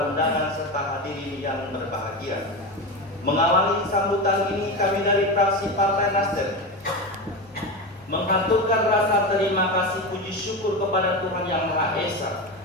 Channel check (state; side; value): normal; both; correlation 0.20